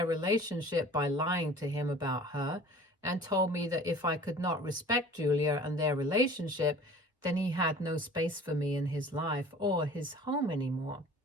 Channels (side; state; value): both; normal; correlation 0.45